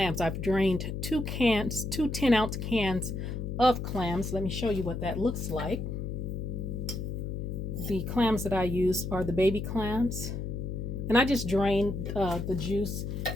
I've drained 2 10-ounce cans of clams. Let me show you what that looks like. The clams that I use are the baby clams. And I just drained the juice,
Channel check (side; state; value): left; noise; hum, 4 dB below the sound